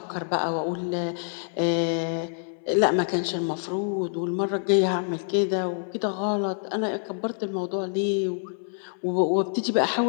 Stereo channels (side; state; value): right; silent; 61 dB below the other